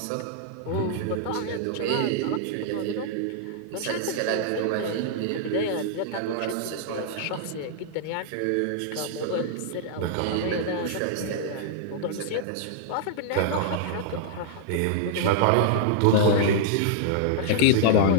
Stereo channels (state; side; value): different; both; correlation -0.01